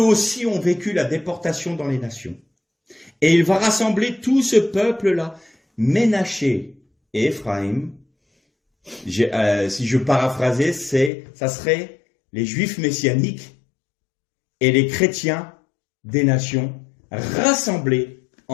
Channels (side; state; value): right; drops out; at 11.1 s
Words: aussi ont vécu la déportation dans les nations. Et il va rassembler tout ce peuple-là, Ménaché et Éphraïm. Si je paraphrasais, ça serait les Juifs messianiques et les chrétiens des nations rassemblés